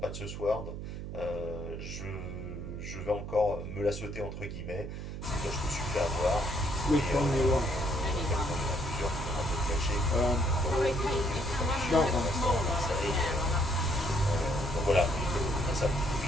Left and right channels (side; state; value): right; noise; hum, 7 dB below the sound